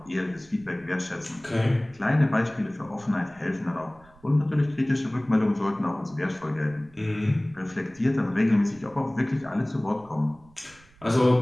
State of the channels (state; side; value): noise; right; rumble, 27 dB below the sound